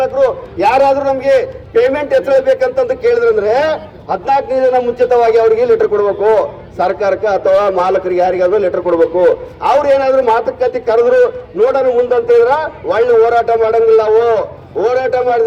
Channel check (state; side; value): identical; both; correlation 1.00